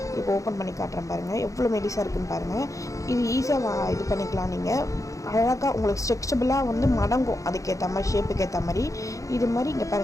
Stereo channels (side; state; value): right; late; 0.16 ms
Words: இப்போ ஓப்பன் பண்ணி காட்டுறேன் பாருங்கள், எவ்வளோ மெலிசாக இருக்குதுன்னு பாருங்கள். இது ஈஸியாக இது பண்ணிக்கலாம். நீங்கள் அழகாக உங்களுக்கு ஸ்ட்ரெச்சபிளாக வந்து மடங்கும், அதுக்கேற்ற மாதிரி ஷேப்புக்கு ஏற்ற மாதிரி. இது மாதிரி இங்கே